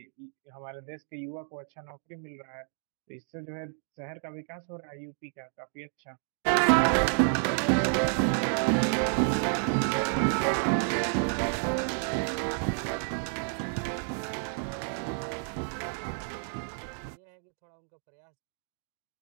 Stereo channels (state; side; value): silent; left; 57 dB below the other